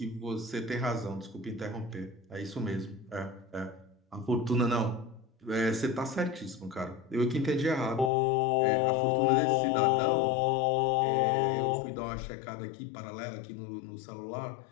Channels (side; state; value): right; drops out; at 8.1 s